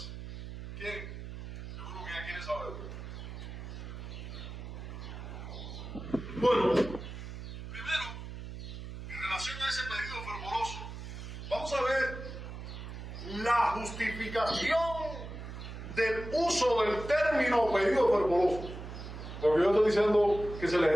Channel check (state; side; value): noise; right; hum, 9 dB below the sound